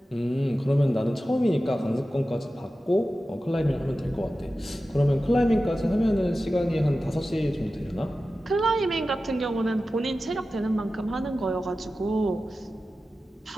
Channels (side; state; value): both; normal; correlation 0.94